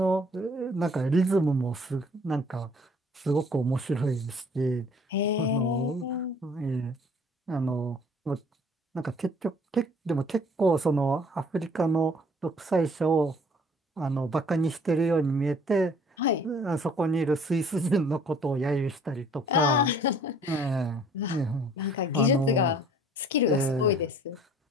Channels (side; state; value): both; normal; correlation 0.55